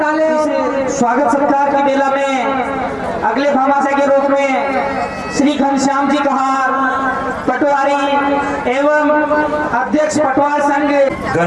ले। स्वागत सत्कार की मेला में अगले भामाशाह के रूप में श्री घनश्याम जी कहार पटवारी एवं अध्यक्ष पटवार संघ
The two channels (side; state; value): both; identical; correlation 1.00